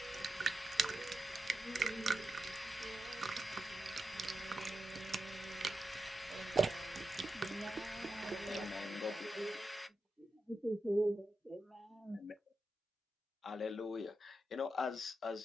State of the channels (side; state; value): both; normal; correlation 0.89